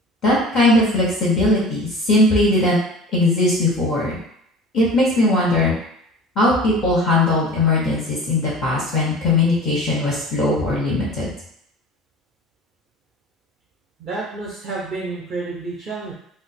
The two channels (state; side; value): normal; both; correlation 0.39